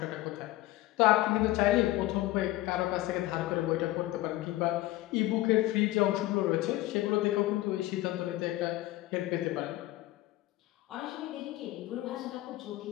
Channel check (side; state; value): right; quieter; 17.1 dB